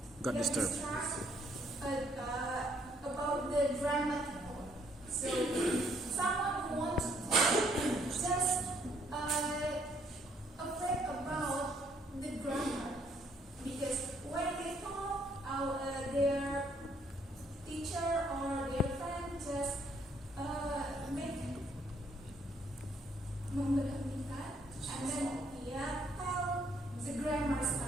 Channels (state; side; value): normal; both; correlation 0.68